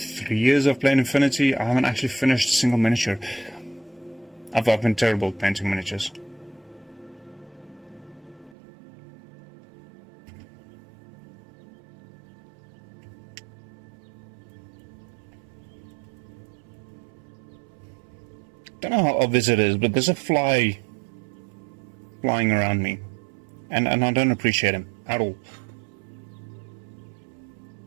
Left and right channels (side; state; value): left; drops out; at 8.6 s